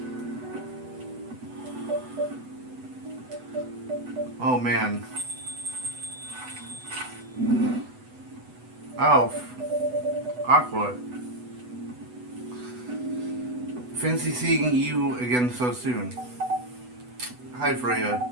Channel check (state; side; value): late; left; 8.0 ms